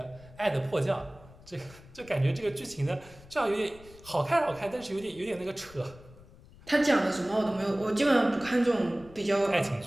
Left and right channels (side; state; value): left; noise; rumble, 22 dB below the sound